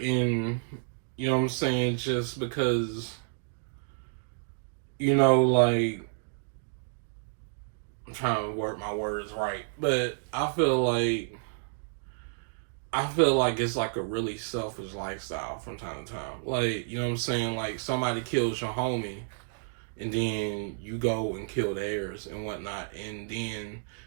you know what I'm saying, just because, you know, like, I'm trying to work my words right, but I feel like it's like a really selfish lifestyle from time to time. Like, you know what I'm saying? Like, somebody kills your homie, and then you go and kill theirs and whatnot. And then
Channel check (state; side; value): silent; left; digital silence